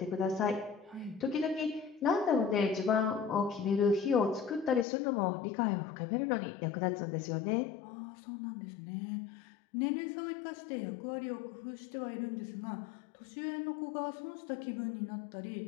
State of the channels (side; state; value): right; drops out; at 4.9 s